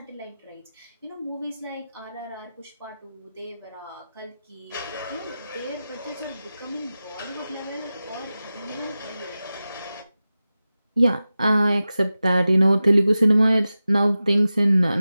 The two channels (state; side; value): inverted; both; correlation -0.94